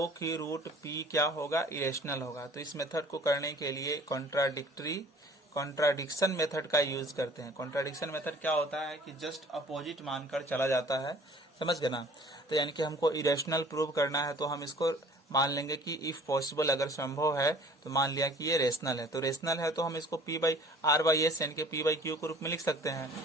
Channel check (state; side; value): normal; both; correlation 0.50